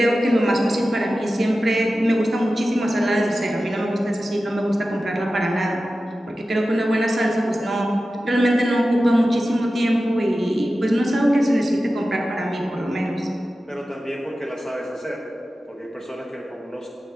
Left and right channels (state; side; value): normal; both; correlation 0.94